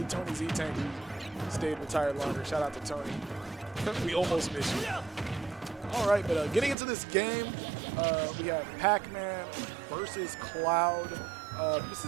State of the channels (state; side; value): drops out; left; at 6.8 s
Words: Tony Z-Tank who stayed retired longer. Shout out to Tony. We almost missed you. All right, but getting into this game, we have Pac-Man versus Cloud. This